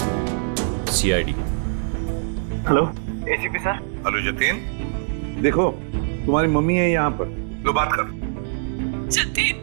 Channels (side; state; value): left; silent; digital silence